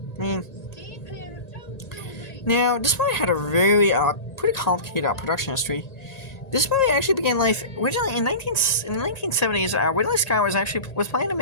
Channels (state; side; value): late; right; 1.9 ms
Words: now, this movie had a very, pretty complicated production history. This movie actually began life originally in the 1970s. Ridley Scott was planning to